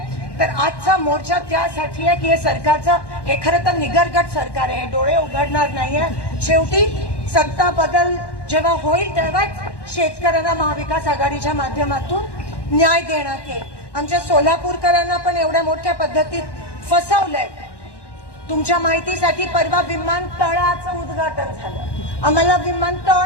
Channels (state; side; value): late; right; 1.1 ms